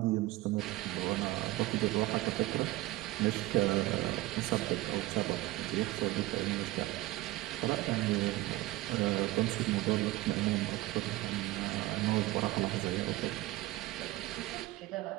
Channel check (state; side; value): quieter; left; 18.2 dB